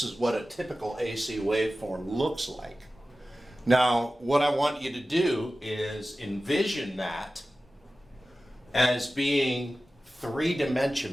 is what a typical AC waveform looks like. Now, what I want you to do is envision that as being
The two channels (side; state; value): both; normal; correlation 0.95